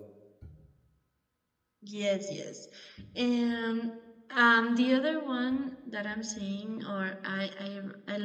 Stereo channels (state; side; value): identical; both; correlation 1.00